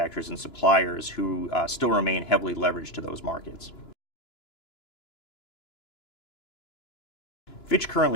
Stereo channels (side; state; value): right; late; 2.9 ms